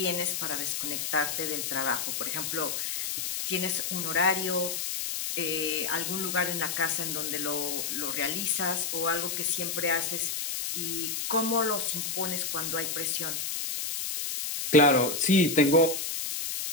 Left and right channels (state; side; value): noise; left; hiss, 2 dB below the sound